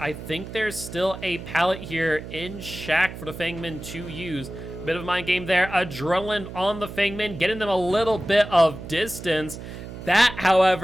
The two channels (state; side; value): noise; right; hum, 11 dB below the sound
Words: think there's still a pallet here in Shack for the Feng Min to use. Bit of a mind game there. Adrenaline on the Feng Min, getting them a little bit of distance. That,